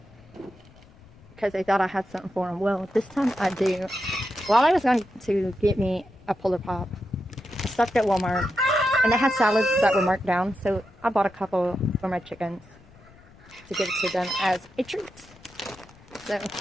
because they thought I had something for them. Well, this time I do. While I was going to get me a Polar Pop, I stopped at Walmart and they had salads that were marked down, so I bought a couple for my chickens to give it to them as a treat. So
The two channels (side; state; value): left; noise; rumble, 24 dB below the sound